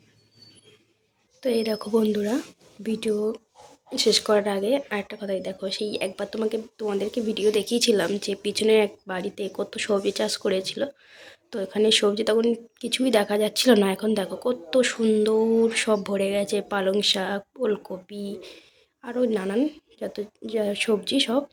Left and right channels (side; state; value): both; identical; correlation 1.00